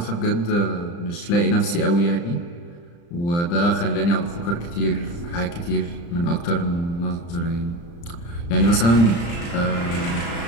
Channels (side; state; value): right; late; 35 ms